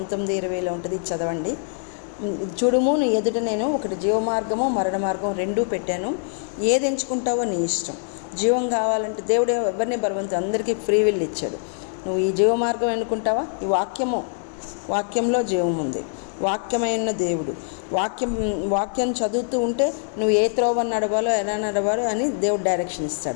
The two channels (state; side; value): silent; right; 63 dB below the other